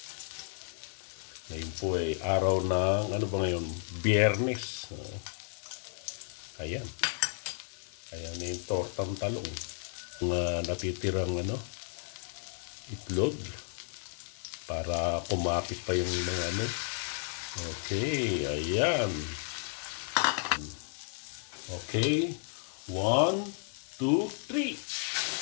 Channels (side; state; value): right; silent; 56 dB below the other